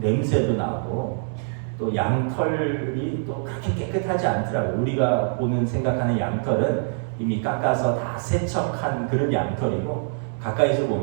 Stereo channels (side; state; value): left; silent; 59 dB below the other